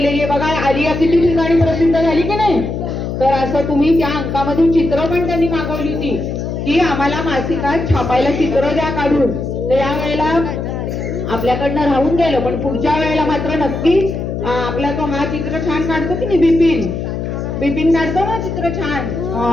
आहे बघा. आलिया किती ठिकाणी प्रसिद्ध झाली की नाही. तर असं तुम्ही त्या अंकामध्ये चित्र पण त्यांनी मागवली होती की आम्हाला मासिकात छापायला चित्र द्या काढून. तर यावेळेला आपल्याकडनं राहून गेलं, पण पुढच्या वेळेला मात्र नक्की आपला तो हा चित्र छान काढतो की नाही, बिपिन काढतो ना चित्र छान.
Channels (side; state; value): left; noise; hum, 4 dB below the sound